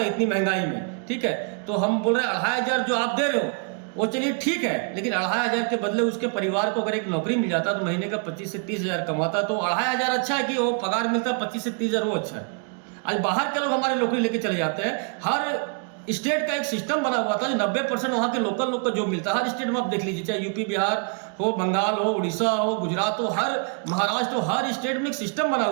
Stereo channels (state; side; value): quieter; left; 39.5 dB